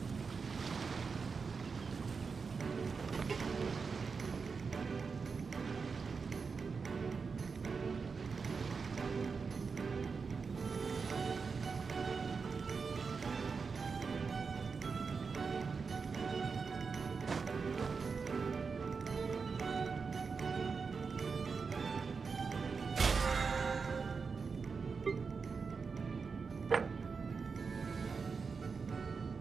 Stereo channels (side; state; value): left; quieter; 5.1 dB